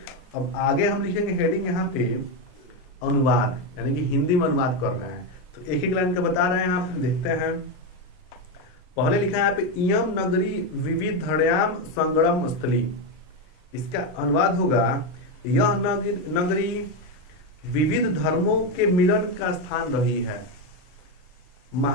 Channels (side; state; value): right; late; 39 ms